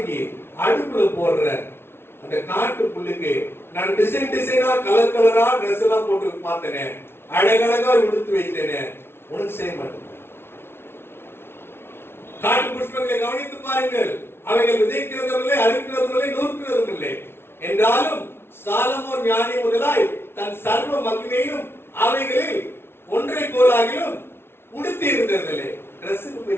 அடுப்புல போடுற அந்த காட்டு புல்லுக்கு நான் டிசைனா கலர் கலரா ட்ரெஸ் எல்லாம் போட்டு பார்த்தேனே, அழகழகா உடுத்து வைத்தேனே, உனக்கு செய்ய மாட்டேன். காட்டு புஷ்பங்களை கவனித்து பாருங்கள், அவைகள் விதைக்கிறதும் இல்லை, அறுக்கிறதும் இல்லை, நூற்கிறதும் இல்லை. என்றாலும் சாலமோன் ஞானி முதலாய் தன் சர்வ மகிமையும் அவைகளில் ஒன்றை போலாகிலும் உடுத்தி இருந்ததில்லை. ட்ரெஸ்ஸுக்கு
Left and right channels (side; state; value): right; late; 0.12 ms